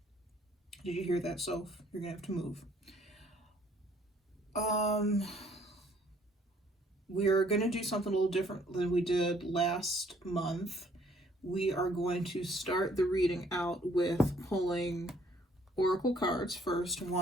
you hear that, Soph? You're going to have to move. We're going to do something a little different than we did last month. We are going to start the reading out with pulling oracle cards first,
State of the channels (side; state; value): both; normal; correlation 0.62